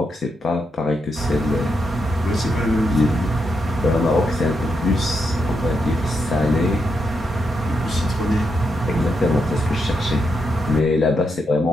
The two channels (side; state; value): both; normal; correlation 0.82